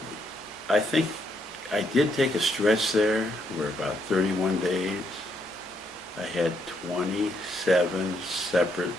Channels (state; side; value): normal; both; correlation 0.75